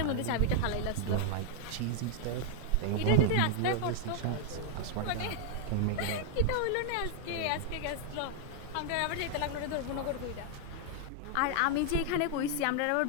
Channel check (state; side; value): different; both; correlation 0.00